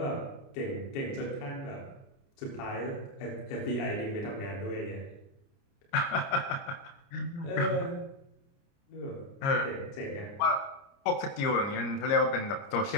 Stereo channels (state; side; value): late; right; 29 ms